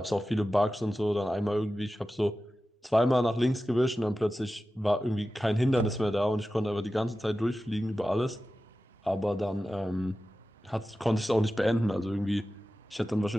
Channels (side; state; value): both; normal; correlation 0.94